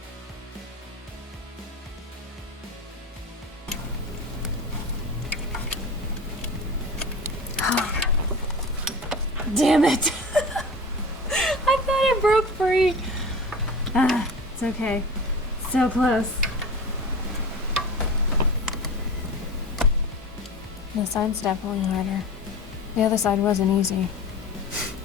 Damn it! I thought it broke free. It's okay. So close. This side's definitely harder. The other side wasn't easy.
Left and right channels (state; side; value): normal; both; correlation 0.34